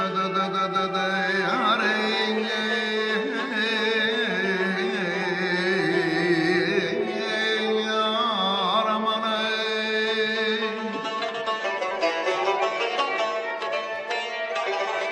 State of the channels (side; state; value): both; identical; correlation 1.00